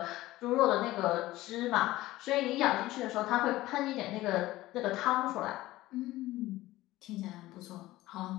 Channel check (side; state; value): right; quieter; 17.1 dB